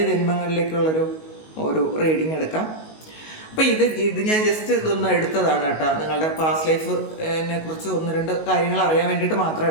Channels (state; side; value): late; right; 19 ms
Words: ജന്മങ്ങളിലേക്കുള്ളൊരു റീഡിങ് എടുക്കാം. അപ്പോൾ ഇത് ഞാൻ ജസ്റ്റ് ഇതൊന്ന് എടുത്തതാണ് കേട്ടോ. നിങ്ങളുടെ പാസ്റ്റ് ലൈഫിനെ കുറിച്ച് 1-2 കാര്യങ്ങൾ അറിയാൻ വേണ്ടിയിട്ട് മാത്രം